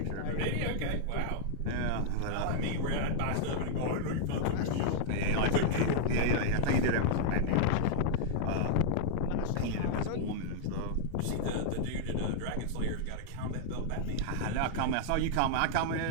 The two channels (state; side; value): different; both; correlation -0.01